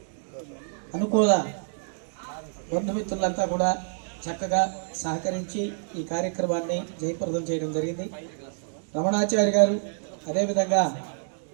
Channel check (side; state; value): left; silent; digital silence